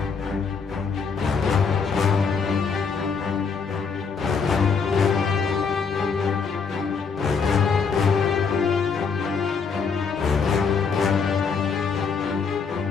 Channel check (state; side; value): quieter; right; 5.5 dB